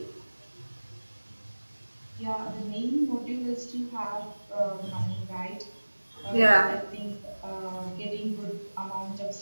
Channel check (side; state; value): both; inverted; correlation -1.00